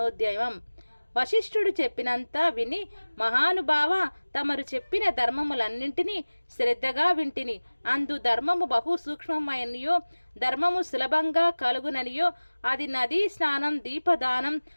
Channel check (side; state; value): both; inverted; correlation -1.00